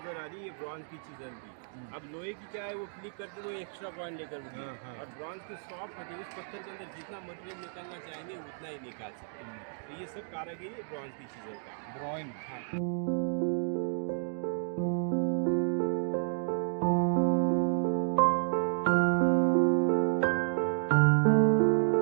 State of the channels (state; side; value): silent; left; digital silence